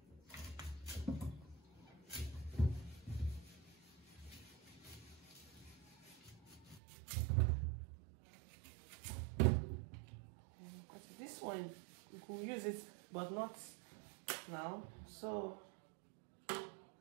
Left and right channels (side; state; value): left; drops out; at 6.8 s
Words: This one we can use it, but not now, so